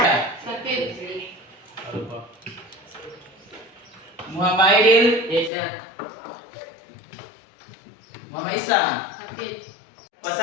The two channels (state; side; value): drops out; right; at 5.5 s